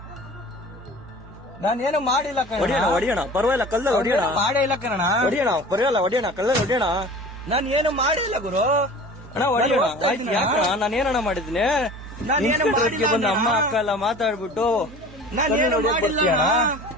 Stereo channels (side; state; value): both; normal; correlation 0.40